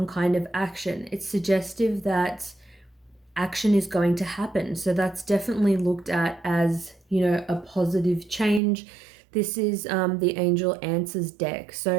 kind of action. It's suggestive that action is going to happen. So that's definitely looked at as, a positive change. This is the Angel Answers deck.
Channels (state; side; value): drops out; left; at 8.6 s